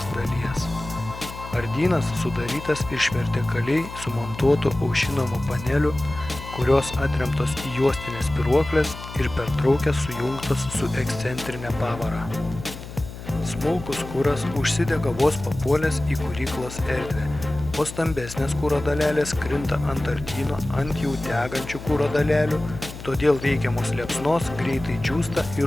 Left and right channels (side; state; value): left; noise; hum, 12 dB below the sound